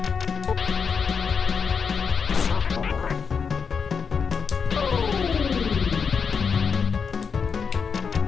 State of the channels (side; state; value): right; quieter; 5.9 dB